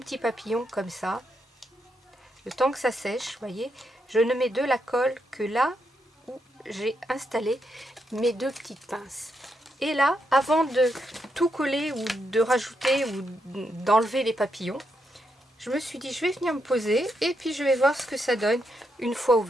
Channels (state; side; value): normal; both; correlation 0.81